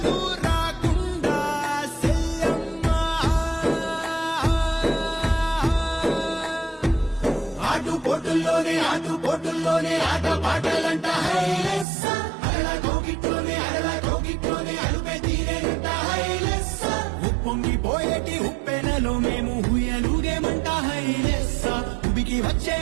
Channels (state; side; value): drops out; left; at 11.9 s